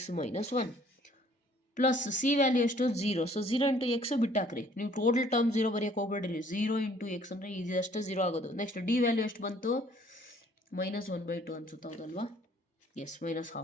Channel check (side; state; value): both; normal; correlation 0.58